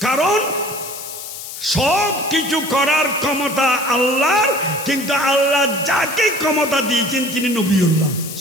কারণ সব কিছু করার ক্ষমতা আল্লাহর, কিন্তু আল্লাহ যাকে ক্ষমতা দিয়েছেন তিনি নবিউল্লাহ।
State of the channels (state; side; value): noise; left; hiss, 10 dB below the sound